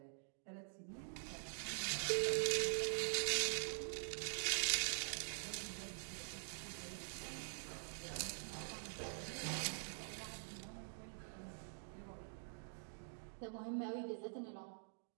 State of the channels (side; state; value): left; silent; digital silence